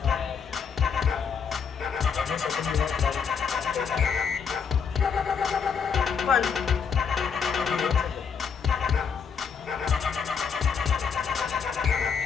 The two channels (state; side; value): quieter; right; 6.4 dB